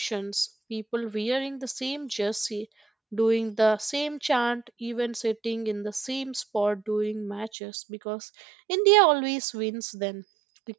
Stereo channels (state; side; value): drops out; left; at 7.5 s